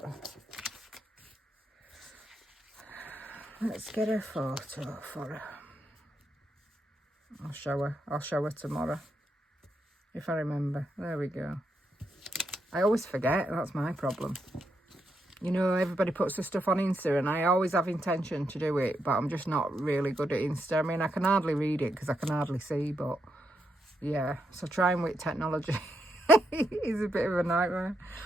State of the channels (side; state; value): both; normal; correlation 0.82